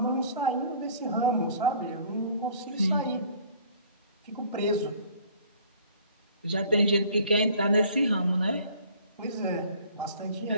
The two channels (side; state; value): both; inverted; correlation -0.54